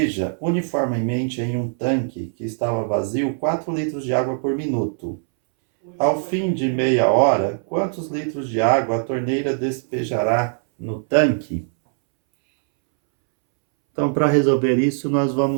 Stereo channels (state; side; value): silent; left; 65 dB below the other